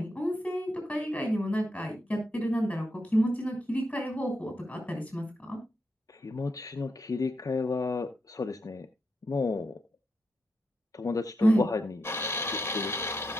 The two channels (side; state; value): both; normal; correlation 0.83